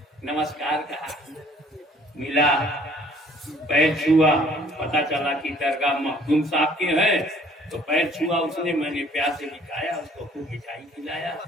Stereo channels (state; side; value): normal; both; correlation 0.57